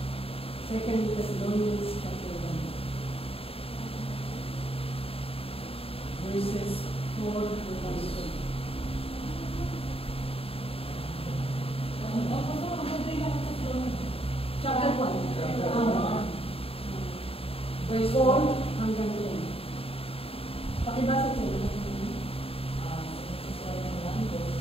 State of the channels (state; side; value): late; right; 0.28 ms